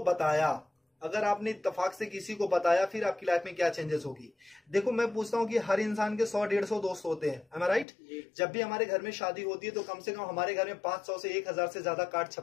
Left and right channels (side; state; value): right; drops out; at 7.9 s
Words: बताया, अगर आपने इत्तेफाक से किसी को बताया, फिर आपकी लाइफ में क्या चेंजेस होगी? देखो, मैं पूछता हूं कि हर इंसान के 100-150 दोस्त होते हैं, am I right? जब भी हमारे घर में शादी होती है तो कम से कम हमारे घर में 500 से 1000 से ज्यादा कार्ड